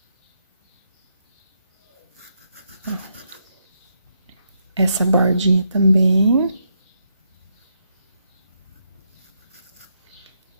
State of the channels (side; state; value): both; inverted; correlation -0.79